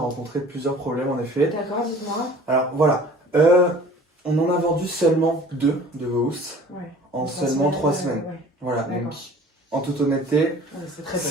rencontré plusieurs problèmes en effet. D'accord, dites-moi. Alors voilà, on en a vendu seulement 2 de vos housses Ouais. en seulement 3 semaines. Ouais. Voilà, D'accord. donc en toute honnêteté, Ouais, c'est très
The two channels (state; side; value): normal; both; correlation 0.47